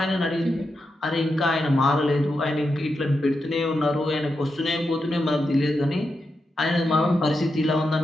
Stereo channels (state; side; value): normal; both; correlation 0.87